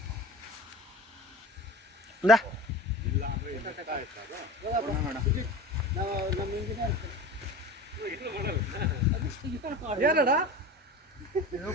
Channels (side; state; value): both; normal; correlation 0.35